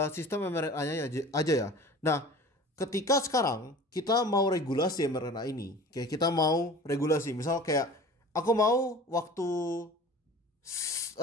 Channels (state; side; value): normal; both; correlation 0.41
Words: sistem mRNA-nya aja ya. Nah, ketika sekarang kita mau regulasi mRNA ini, kayak kita mau regulasi, misal kayak aku mau waktu